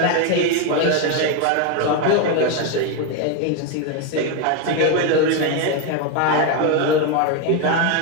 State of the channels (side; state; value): both; different; correlation 0.02